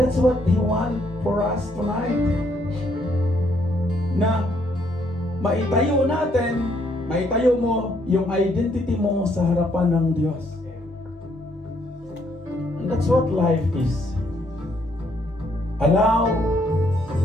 what He wants for us tonight. Na maitayo natin, maitayo mo yung identity mo sa harapan ng Diyos. And that's what life is. Allow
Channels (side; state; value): both; normal; correlation 0.70